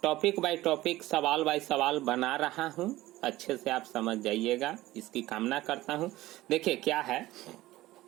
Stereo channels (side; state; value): left; quieter; 17.0 dB